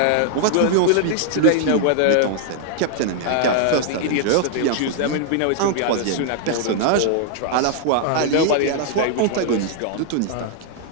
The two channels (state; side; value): different; both; correlation 0.00